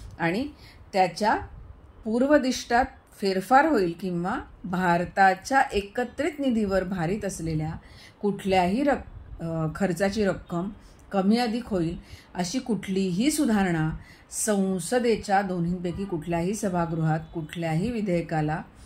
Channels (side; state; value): both; identical; correlation 1.00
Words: आणि त्याच्या पूर्वदिष्टात फेरफार होईल किंवा भारताच्या एकत्रित निधीवर भारित असलेल्या कुठल्याही खर्चाची रक्कम कमी अधिक होईल अशी कुठलीही सुधारणा संसदेच्या दोन्हींपैकी कुठल्याही सभागृहात कुठल्याही विधेयकाला